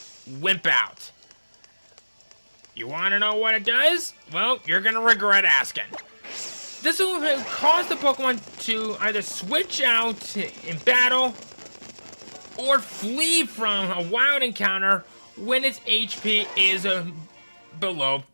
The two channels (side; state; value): both; inverted; correlation -1.00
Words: Wimp Out. You want to know what it does? Well, you're going to regret asking. This will cause the Pokemon to either switch out in battle or flee from a wild encounter when its HP is below